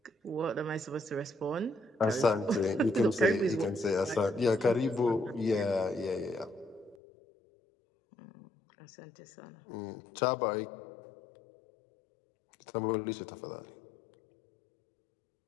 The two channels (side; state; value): right; drops out; at 7.0 s